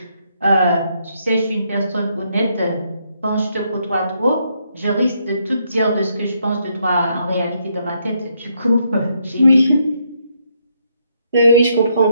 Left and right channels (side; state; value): both; inverted; correlation -0.75